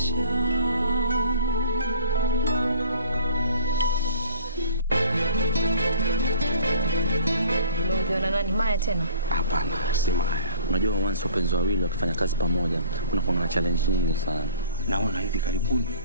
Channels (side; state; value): both; inverted; correlation -0.48